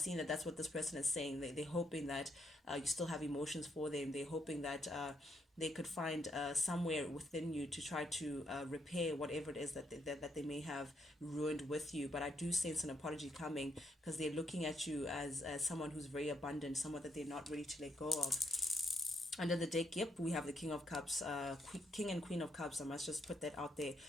that that's what this person is saying. They're hoping that you still have emotions for them. They're hoping that they could find somewhere within you to try to repair whatever it is that they may have ruined with you. But I do sense an apology coming, because they're looking at you as someone who's very abundant, someone that they're not ready to let go of. Under the deck, yep, we have the King of Cups, King and Queen of Cups. I must just put that out there.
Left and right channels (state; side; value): normal; both; correlation 0.77